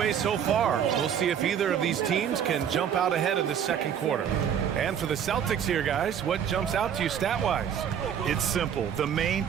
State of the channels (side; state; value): left; quieter; 8.7 dB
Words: so far. We'll see if either of these teams can jump out ahead in the second quarter. And for the Celtics here, guys, what jumps out to you stat-wise? It's simple. The main